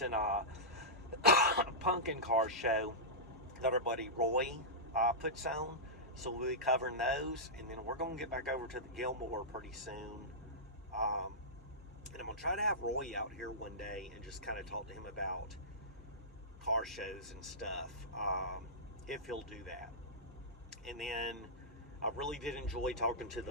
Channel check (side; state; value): both; normal; correlation -0.13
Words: Pumpkin car show that our buddy Roy puts on. So we'll be covering those, and then we're going to get back over to the Gilmore pretty soon. And I'm going to try to have Roy out here one day and just kind of talk to him about car shows and stuff, if he'll do that. And then I really did enjoy talking to